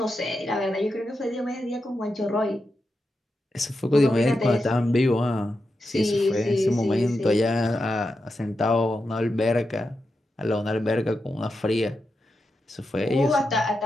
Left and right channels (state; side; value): normal; both; correlation 0.88